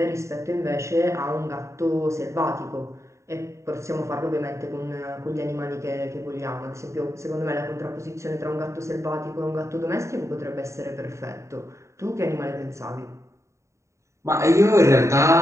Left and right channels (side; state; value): left; late; 0.14 ms